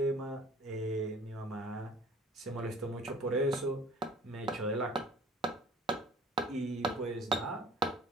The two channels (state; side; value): normal; both; correlation 0.48